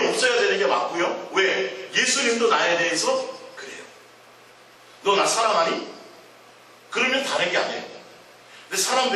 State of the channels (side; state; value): both; identical; correlation 1.00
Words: 없어야 되는 게 맞고요. 왜? 예수님도 나에 대해서 그래요. 너 나 사랑하니? 그러면 다른 게 아니에요. 근데